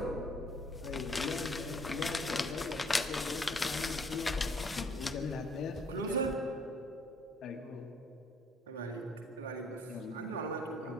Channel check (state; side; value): normal; both; correlation 0.62